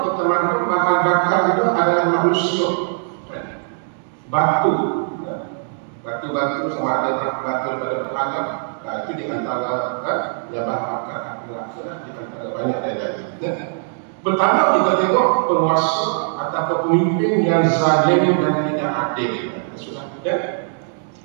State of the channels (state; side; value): silent; left; digital silence